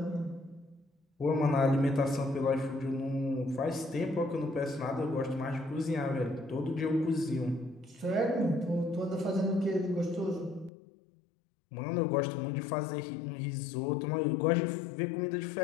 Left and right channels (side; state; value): right; drops out; at 10.7 s